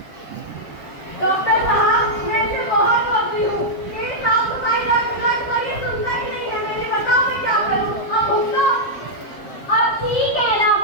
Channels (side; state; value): right; late; 7.6 ms